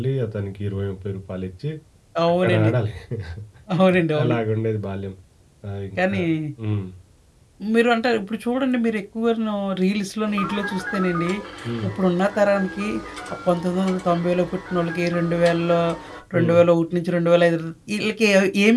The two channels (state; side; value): identical; both; correlation 1.00